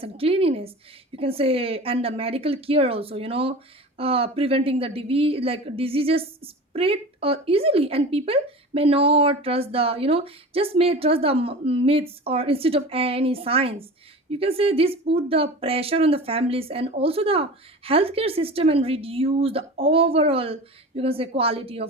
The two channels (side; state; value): both; normal; correlation 0.34